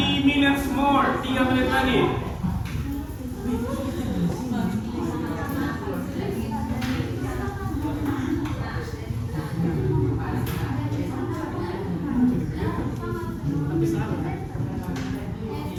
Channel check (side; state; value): both; identical; correlation 1.00